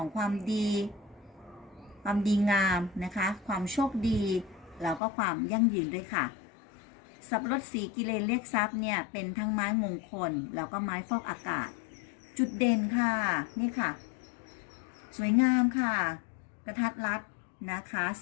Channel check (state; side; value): drops out; right; at 5.0 s